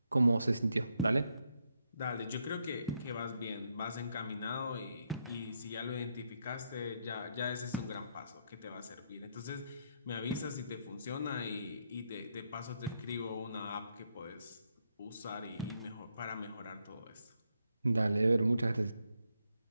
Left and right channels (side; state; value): both; inverted; correlation -0.78